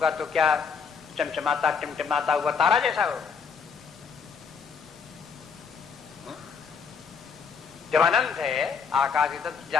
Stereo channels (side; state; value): right; quieter; 5.9 dB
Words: तो क्या चमचमाता टिमटिमाता हुआ तारा जैसा होगा? जब अनंत है आकाश की